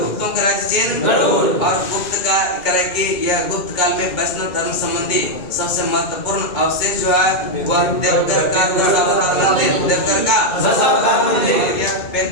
और गुप्त का करे कि यह गुप्त काल में वैष्णव धर्म संबंधी सबसे महत्वपूर्ण अवशेष जो है वह देवघर का दशावतार मंदिर। देवघर का यह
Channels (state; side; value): late; right; 2.2 ms